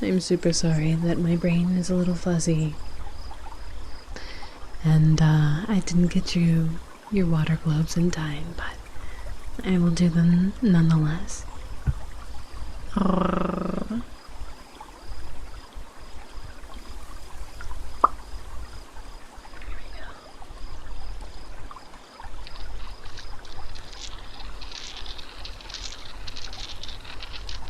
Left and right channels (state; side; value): identical; both; correlation 1.00